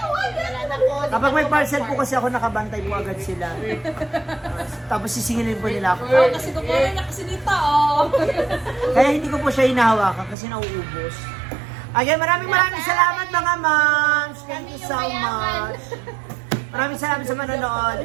kapag may parcel po kasi ako nakabantay po agad sila. Tapos sisingilin po nila ako. Oh, kasi kukunin niya kasi dito, oh. Kaya hindi ko po siya hinahawakan kasi nauubos. Again, maraming salamat mga moms. Thank you so much. Maraming salamat sa manonood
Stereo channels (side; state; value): left; drops out; at 10.4 s